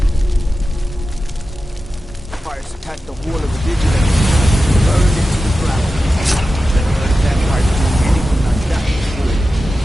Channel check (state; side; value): normal; both; correlation 0.93